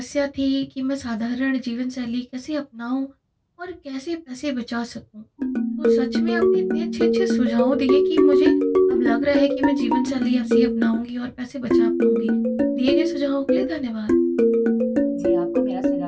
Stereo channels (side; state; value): both; identical; correlation 1.00